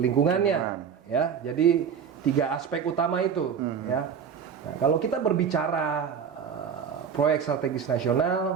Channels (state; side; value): quieter; left; 7.2 dB